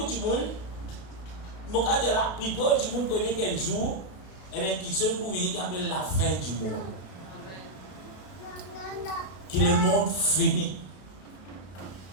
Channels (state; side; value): late; right; 32 ms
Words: de monde, mon cas de la plupart du monde connaît quel jour, et bien qui se pour venir qui appelle la fin du monde. Qui le monde fini.